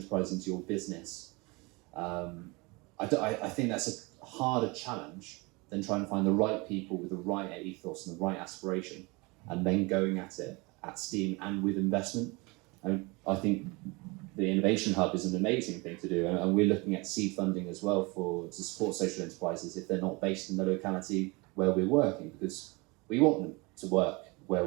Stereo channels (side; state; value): left; quieter; 26.5 dB